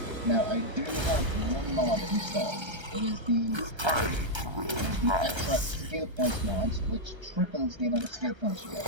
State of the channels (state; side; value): late; left; 1.3 ms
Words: Now I do have one mod installed, It is the extra skill points mods, which triples the amount of skill points you get.